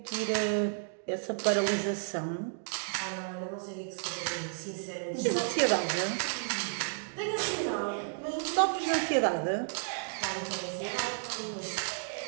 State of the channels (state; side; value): silent; left; digital silence